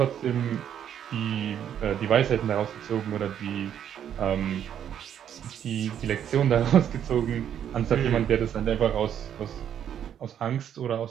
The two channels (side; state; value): left; quieter; 9.5 dB